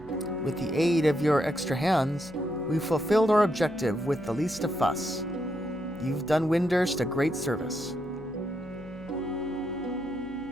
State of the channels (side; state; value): right; noise; hum, 22 dB below the sound